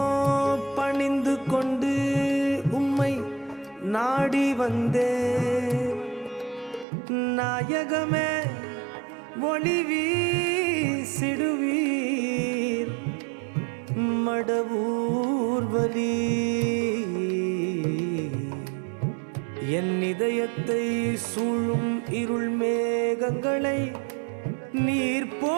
பணிந்து கொண்டு உம்மை நாடி வந்தே நாயகமே ஒளி வீசிடுவீர் மடவூர் வலி என் இதயத்தை சூழும் இருள் மேகங்களை நீர்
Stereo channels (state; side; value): drops out; left; at 6.9 s